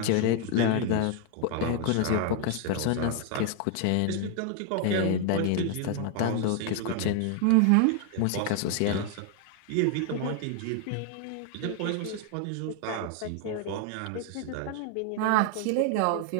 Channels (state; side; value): different; both; correlation 0.00